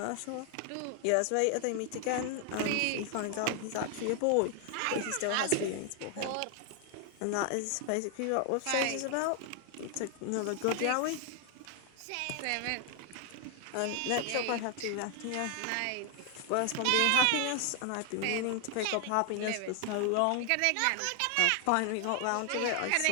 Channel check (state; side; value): different; both; correlation 0.00